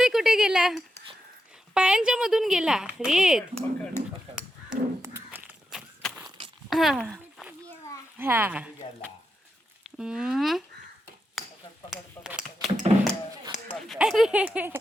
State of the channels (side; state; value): both; normal; correlation 0.86